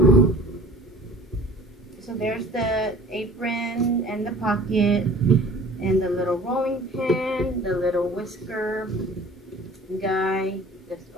So there's the apron and the pocket and the little rolling pin, the little whisker guy. This,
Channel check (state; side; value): normal; both; correlation 0.46